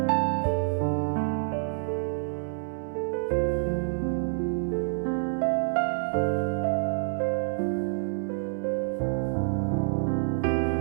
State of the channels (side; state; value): left; silent; digital silence